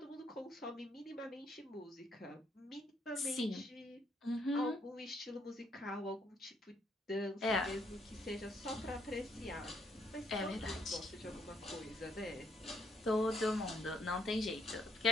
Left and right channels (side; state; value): both; normal; correlation 0.70